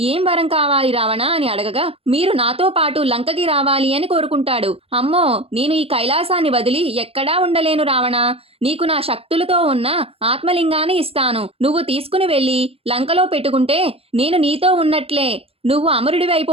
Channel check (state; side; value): late; left; 0.28 ms